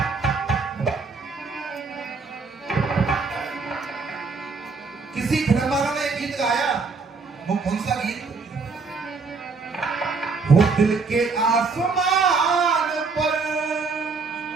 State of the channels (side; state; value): left; quieter; 4.5 dB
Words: किसी फिल्म वालों ने एक गीत गाया, वो कौन सा गीत? वो दिल के आसमान पर,